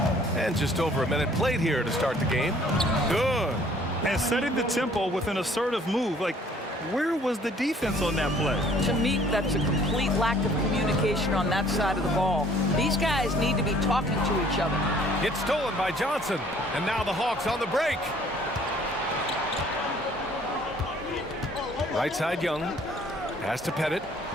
And just over a minute played here to start the game. Good. And setting the tempo with an assertive move. Like, where was the defense on that play? To me, that's a complete lack of communication on that side of the ball. These guys need to be talking to each other. It's stolen by Johnson. And now the Hawks on the break. Right side Young. Pass to Pettit.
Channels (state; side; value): normal; both; correlation 0.57